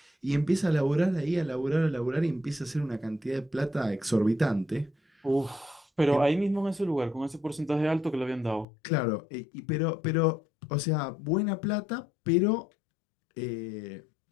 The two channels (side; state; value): right; drops out; at 8.7 s